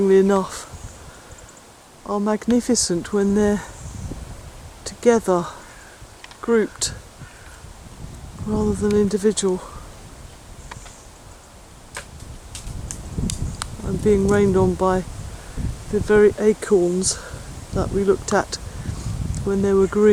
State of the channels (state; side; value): identical; both; correlation 1.00